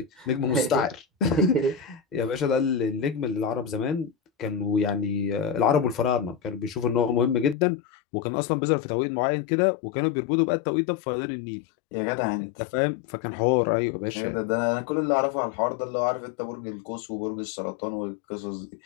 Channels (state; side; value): drops out; right; at 7.6 s